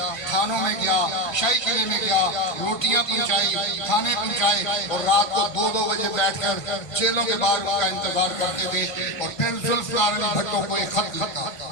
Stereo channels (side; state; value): right; late; 1.6 ms